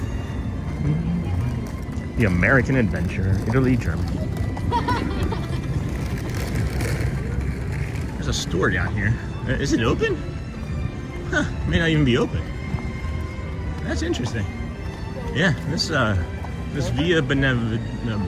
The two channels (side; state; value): both; identical; correlation 1.00